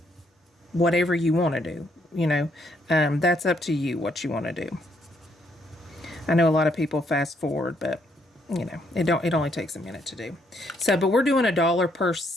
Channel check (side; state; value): both; normal; correlation 0.72